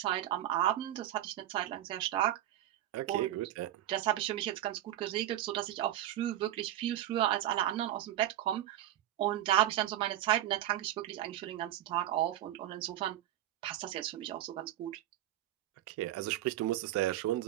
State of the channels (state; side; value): quieter; left; 13.1 dB